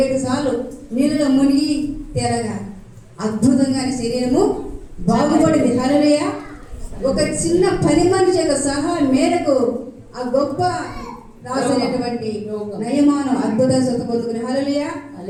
సార్లు నీళ్ళలో మునిగి తేరగా అద్భుతంగా శరీరము బాగుపడింది. హల్లెలూయా. ఒక చిన్న పని మనిషి యొక్క సహాయం మేరకు ఆ గొప్ప రాసినటువంటి నయమాను అద్భుత స్వత పొందుకుని. హల్లెలూయా.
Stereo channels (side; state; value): both; identical; correlation 1.00